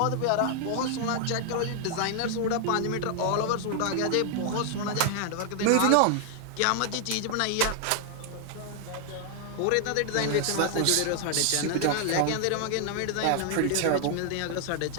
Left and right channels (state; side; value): different; both; correlation 0.00